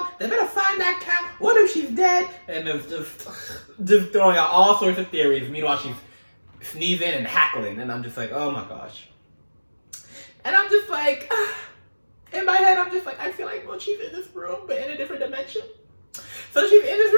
They better find that cat. What if she's dead? And it's just throwing out all sorts of theories. Meanwhile, she's sneezing and hackling. And I'm just like, oh my gosh. And I'm just like, in my head, I'm just like, I feel like, well, she's in this room, but in a different dimension. So she's in this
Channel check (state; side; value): inverted; both; correlation -1.00